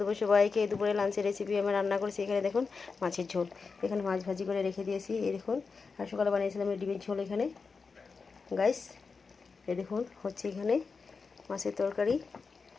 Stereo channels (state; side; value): quieter; right; 4.8 dB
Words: দুপুর সবাইকে। দুপুরে লাঞ্চের রেসিপি আমি রান্না করেছি। এখানে দেখুন মাছের ঝোল, এখানে মাছ ভাজি করে রেখে দিয়েছি। এই দেখুন, আর সকালে বানিয়েছিলাম এই ডিমের ঝোল। এখানে গাইস এই দেখুন হচ্ছে এখানে মাছের তরকারি।